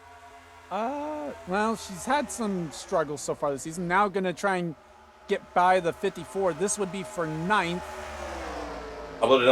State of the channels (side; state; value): both; identical; correlation 1.00